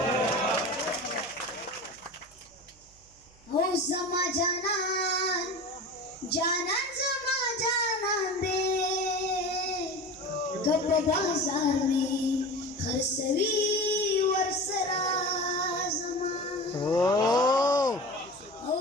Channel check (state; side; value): noise; right; hum, 28 dB below the sound